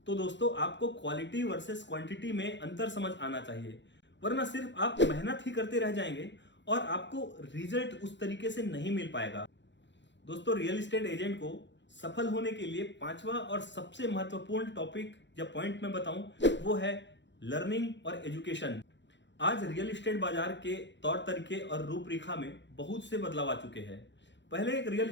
तो दोस्तों आपको क्वालिटी वर्सेस क्वांटिटी में अंतर समझ आना चाहिए, वरना सिर्फ आप मेहनत ही करते रह जाएंगे और आपको रिजल्ट उस तरीके से नहीं मिल पाएगा। दोस्तों रियल एस्टेट एजेंट को सफल होने के लिए 5वां और सबसे महत्वपूर्ण टॉपिक या पॉइंट मैं बताऊं वो है लर्निंग और एजुकेशन। आज रियल एस्टेट बाजार के तौर तरीके और रूपरेखा में बहुत से बदलाव आ चुके हैं। पहले एक रियल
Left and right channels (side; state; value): right; late; 0.52 ms